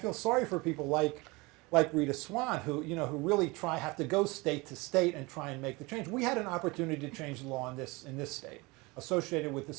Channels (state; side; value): quieter; left; 24.7 dB